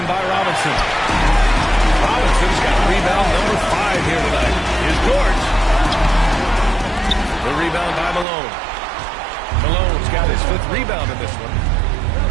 by Robinson. Robinson's got rebound number 5 here tonight. Here's George. The rebound by Malone. Malone's got his 5th rebound in this one.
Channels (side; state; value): left; drops out; at 8.2 s